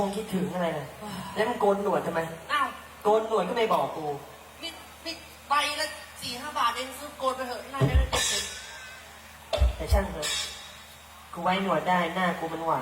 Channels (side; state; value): both; identical; correlation 1.00